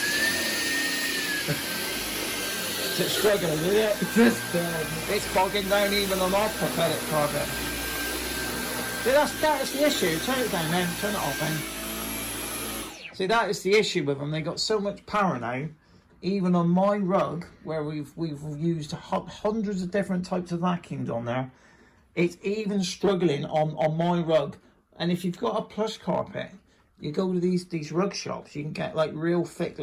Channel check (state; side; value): identical; both; correlation 1.00